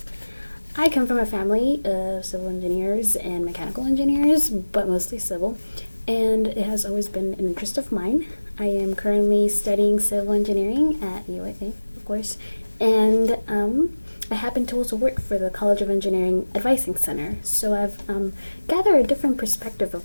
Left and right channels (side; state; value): both; inverted; correlation -1.00